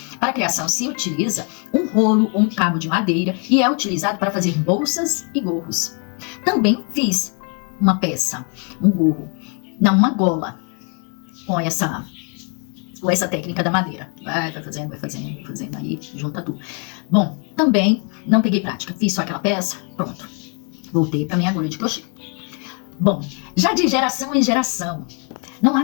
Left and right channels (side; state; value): right; quieter; 37.9 dB